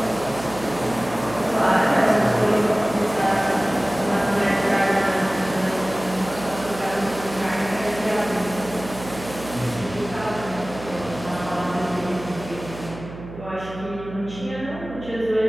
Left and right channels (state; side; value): noise; right; hum, 13 dB below the sound